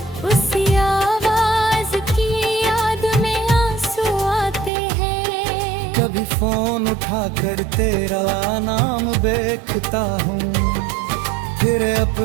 उसी आवाज की याद में आंसू आते हैं। कभी फोन उठाकर तेरा नाम देखता हूँ, फिर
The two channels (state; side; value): drops out; left; at 4.7 s